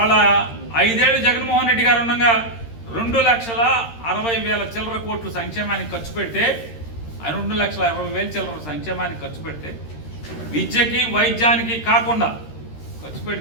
5 ఏళ్ళు జగన్మోహన్ రెడ్డి గారు ఉండగా 2,60,000 చిల్లర కోట్లు సంక్షేమానికి ఖర్చు పెడితే, ఆయన 2,60,000 చిల్లర సంక్షేమానికి ఖర్చు పెడితే, విద్యకి వైద్యానికి కాకుండా ఖర్చు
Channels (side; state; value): right; late; 13 ms